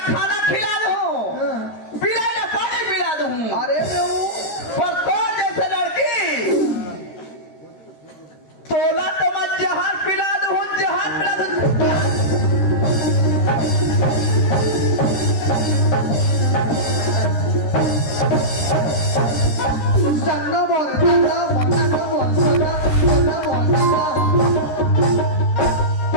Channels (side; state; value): right; late; 13 ms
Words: खाना खिला दूं, बिलाई का पानी पिला दूं। अरे मैं हूँ पर तो जैसे लड़की तोला तो मैं जहान पिला दूं, जहान पिला दूं। सन्ना बोल सन्ना बोल सन्ना बोल